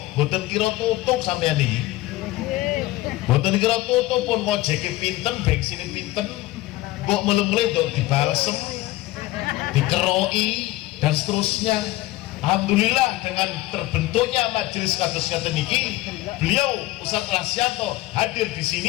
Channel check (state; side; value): quieter; right; 17.8 dB